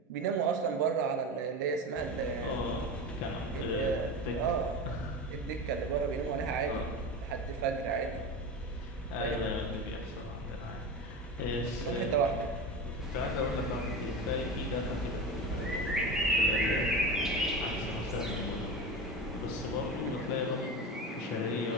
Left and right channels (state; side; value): normal; both; correlation 0.25